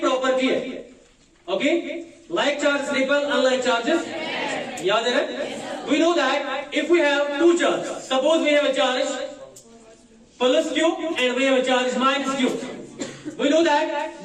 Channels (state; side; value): identical; both; correlation 1.00